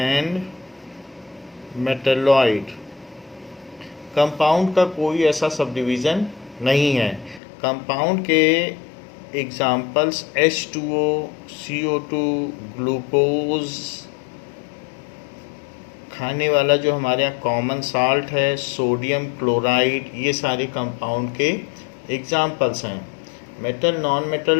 metalloid. Compound का कोई ऐसा सब डिवीज़न नहीं है। कंपाउंड के एग्जाम्पल्स H2O, CO2, ग्लूकोज, खाने वाला जो हमारे यहाँ कॉमन साल्ट है, सोडियम क्लोराइड, ये सारे कंपाउंड के एग्जाम्पल्स हैं। मेटल, नॉन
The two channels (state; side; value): drops out; right; at 7.4 s